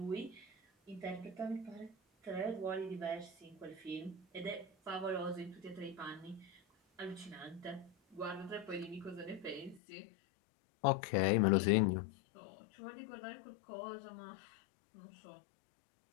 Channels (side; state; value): right; drops out; at 9.8 s